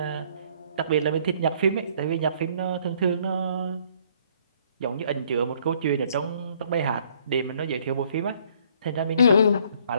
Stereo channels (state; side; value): inverted; both; correlation -0.63